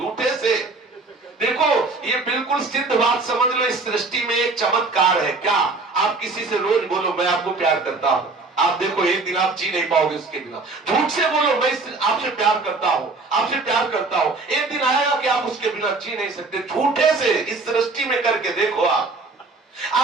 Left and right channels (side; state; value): left; quieter; 3.6 dB